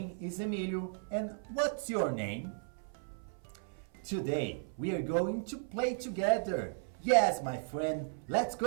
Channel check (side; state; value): left; silent; 54 dB below the other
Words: is Emilio, and what's your name? Today we are going to play together. Yes, my friend, let's